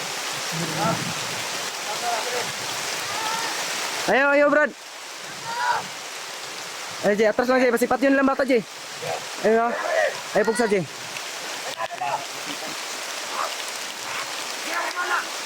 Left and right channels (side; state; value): both; identical; correlation 1.00